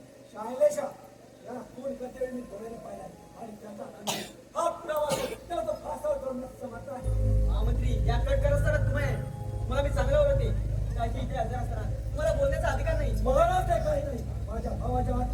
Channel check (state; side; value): identical; both; correlation 1.00